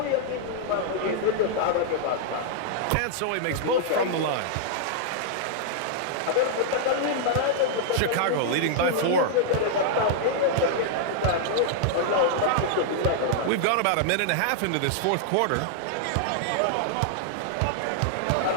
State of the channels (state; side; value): different; both; correlation -0.01